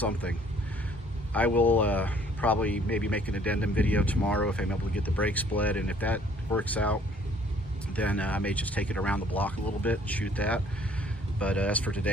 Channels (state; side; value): normal; both; correlation 0.59